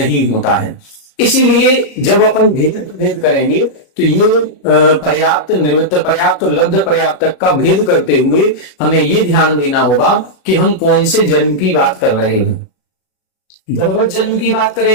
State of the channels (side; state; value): right; late; 37 ms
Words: होता है। इसीलिए जब अपन भेद करेंगे तो ये पर्याप्त, निवृत्त पर्याप्त और लब्ध पर्याप्तक का भेद करते हुए हमें ये ध्यान देना होगा कि हम कौन से जन्म की बात कर रहे हैं। गर्भज जन्म की बात